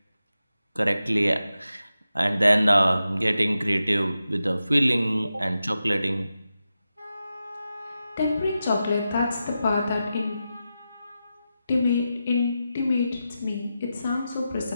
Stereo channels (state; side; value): inverted; both; correlation -0.90